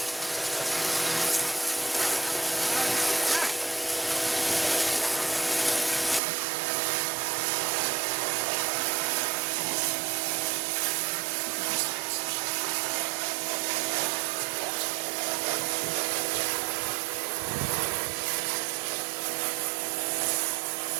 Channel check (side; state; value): left; drops out; at 6.2 s